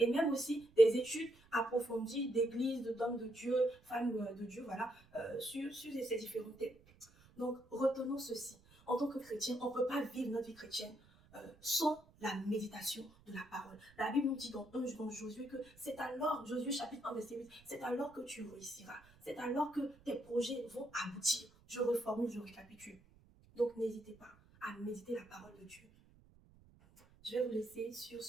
même aussi des études approfondies d'églises, d'hommes de Dieu, femmes de Dieu, voilà, sur ces différents thèmes. Donc, retenons ceci. En tant que chrétien, on ne peut pas vivre notre vie chrétienne sans la méditation de la parole. La Bible nous dit dans Josué que c'est alors, Josué chapitre 1, verset 8, c'est alors que tu réussiras. C'est alors que tes projets vont aboutir. Je reformule, je récapitule. Donc, n'hésitez pas à méditer la parole de Dieu. Je vais vous laisser sur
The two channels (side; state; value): right; noise; rumble, 26 dB below the sound